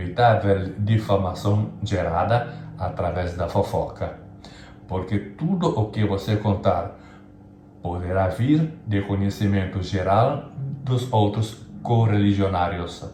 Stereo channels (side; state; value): both; identical; correlation 1.00